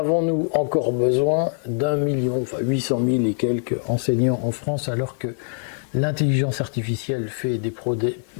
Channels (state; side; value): silent; right; digital silence